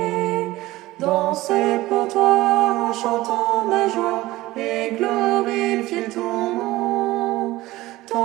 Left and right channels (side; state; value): left; quieter; 17.9 dB